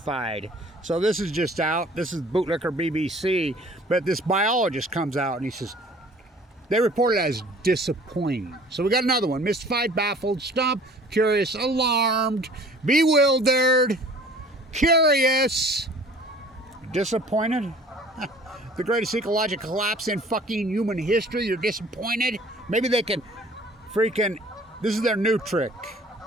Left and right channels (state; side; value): normal; both; correlation 0.50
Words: So this is just out. This is Bootlicker BBC, but this biologist comes out and he says they report it as disappointing. So we got another one: mystified, baffled, stumped, curious, alarmed, bewildered, curious, disappointed. The greatest ecological collapse in fucking human history. You're disappointed? Maybe they can freaking, this is their new trick.